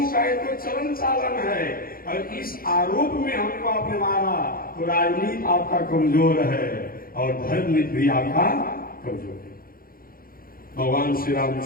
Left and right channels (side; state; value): right; late; 0.42 ms